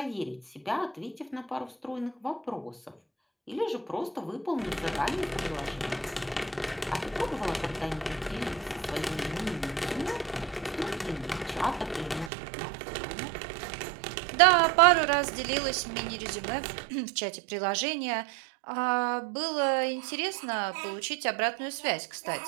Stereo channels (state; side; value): drops out; left; at 12.3 s